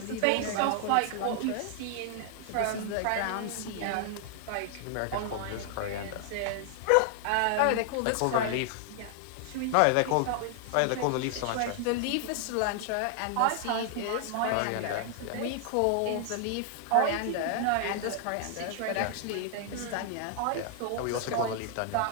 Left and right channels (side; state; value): both; different; correlation 0.00